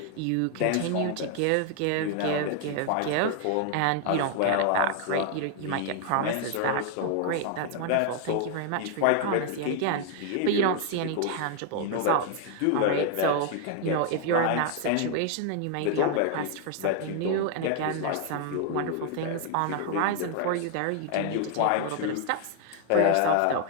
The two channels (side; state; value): both; different; correlation 0.00